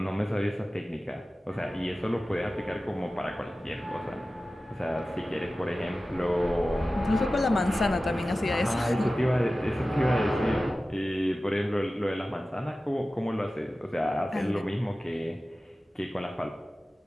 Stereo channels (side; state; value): both; normal; correlation 0.96